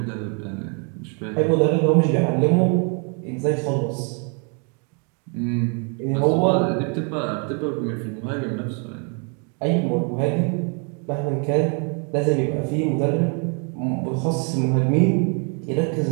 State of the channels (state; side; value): quieter; left; 37.5 dB